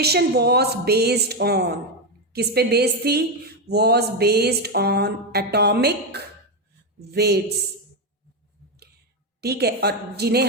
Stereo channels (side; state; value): both; normal; correlation 0.08